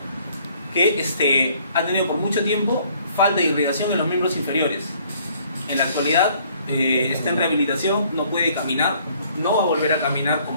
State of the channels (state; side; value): inverted; both; correlation -0.61